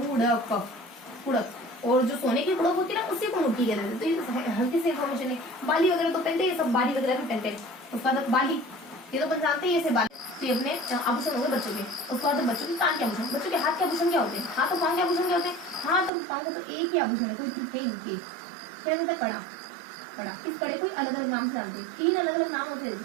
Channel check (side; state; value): left; drops out; at 16.1 s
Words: कुड़क। और जो सोने की कुड़क होती है ना उसी को मुर्की कहते हैं। तो ये हल्की सी इन्फॉर्मेशन है। बाली वगैरह तो पहनते हैं, सब बाली वगैरह भी पहनते हैं। उसके बाद बाली, ये तो अपन जानते हैं, ये से बाली। तो ये अपने आभूषण हो गए बच्चों के। उसके बाद बच्चों के कान के आभूषण, बच्चों के हाथ के आभूषण क्या होते हैं? हाथ और पांव के आभूषण क्या होते हैं? हाथ और पांव को तो एक ही आभूषण है, कोई ट्रिक है नहीं। क्या कहता है? कड़ा, कड़ा। इस कड़े को अलग अलग नाम से जानते हैं, 3 अलग अलग नाम होते हैं